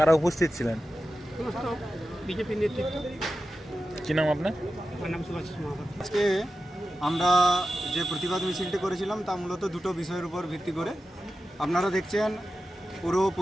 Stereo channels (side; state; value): both; normal; correlation 0.92